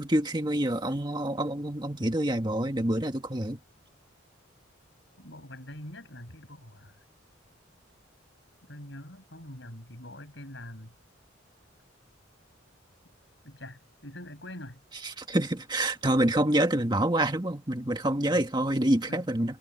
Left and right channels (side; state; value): both; normal; correlation 0.70